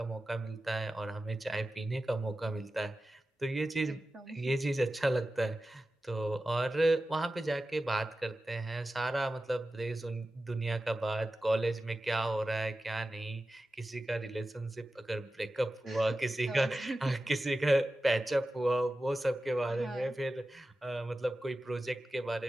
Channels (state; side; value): normal; both; correlation 0.94